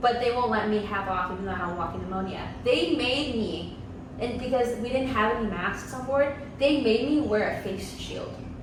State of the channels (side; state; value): both; identical; correlation 1.00